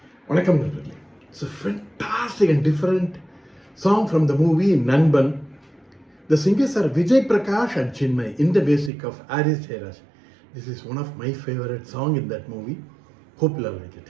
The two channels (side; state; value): left; drops out; at 8.9 s